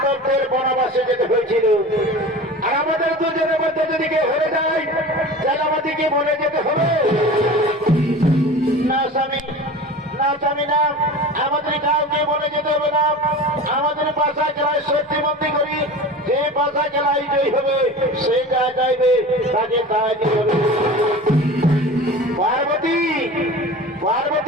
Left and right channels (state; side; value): normal; both; correlation 0.35